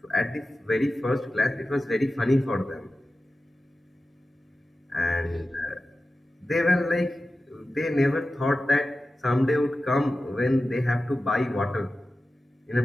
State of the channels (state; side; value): normal; both; correlation 0.94